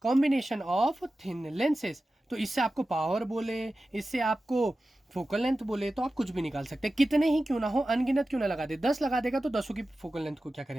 कॉम्बिनेशन ऑफ थिन लेंसेज। तो इससे आपको पावर बोले, इससे आपको फोकल लेंथ बोले, तो आप कुछ भी निकाल सकते हैं, कितने ही क्यों ना हो, अनगिनत क्यों ना लगा दे, 10 लगा देगा तो 10 की फोकल लेंथ को क्या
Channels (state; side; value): normal; both; correlation 0.94